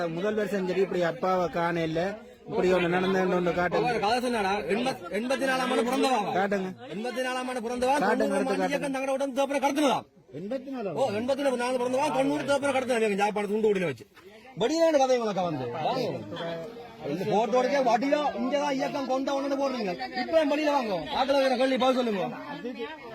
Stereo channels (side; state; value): both; identical; correlation 1.00